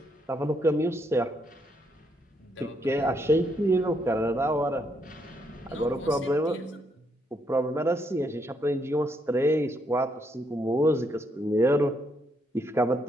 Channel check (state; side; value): normal; both; correlation 0.75